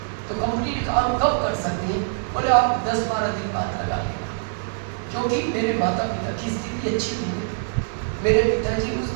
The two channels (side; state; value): left; silent; 63 dB below the other